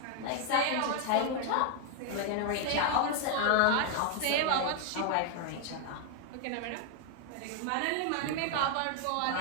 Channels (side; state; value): both; different; correlation 0.00